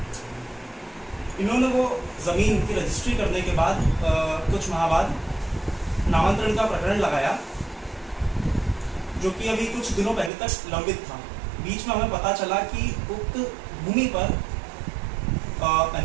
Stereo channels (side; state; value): left; drops out; at 10.3 s